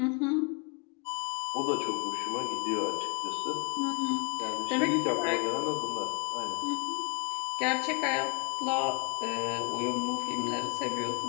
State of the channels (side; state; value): right; quieter; 34.4 dB